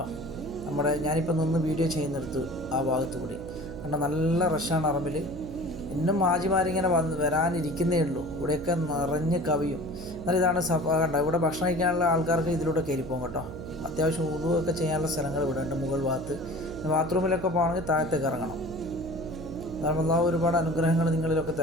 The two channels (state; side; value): noise; right; hum, 10 dB below the sound